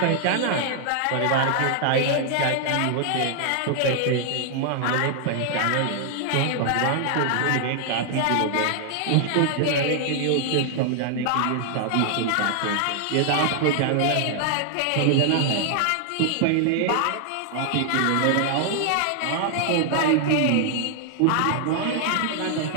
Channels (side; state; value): both; different; correlation 0.00